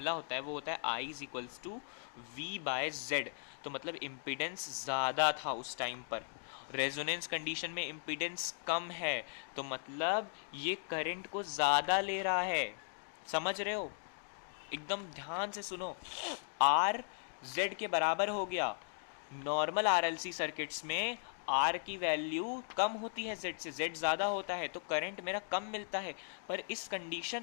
होता है वो होता है I is equals to V by Z. तो मतलब इम्पिडेंस ज़्यादा था उस टाइम पर, रेजोनेंस कंडीशन में इम्पिडेंस कम है, तो मतलब ये करंट को ज़्यादा ले रहा है। समझ रहे हो, एकदम ध्यान से सुनो। R Z के बराबर हो गया। नॉर्मल RLC सर्किट्स में R की वैल्यू कम होती है Z से, Z ज़्यादा होता है तो करंट मेरा कम मिलता है। पर इस कंडीशन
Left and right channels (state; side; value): silent; right; digital silence